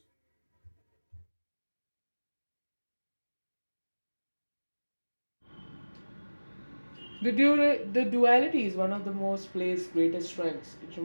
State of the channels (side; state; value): both; inverted; correlation -1.00